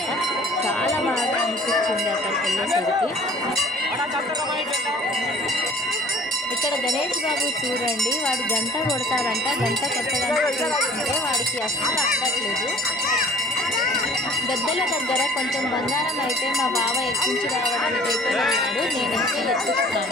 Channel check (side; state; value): both; normal; correlation 0.50